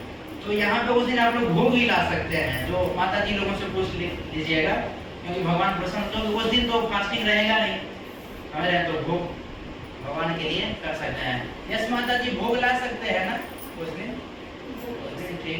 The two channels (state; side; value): identical; both; correlation 1.00